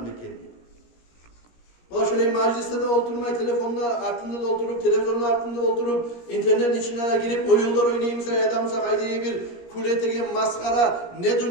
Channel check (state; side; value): late; right; 17 ms